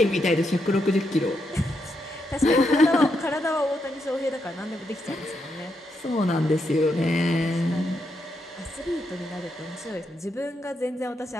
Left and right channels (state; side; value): normal; both; correlation 0.81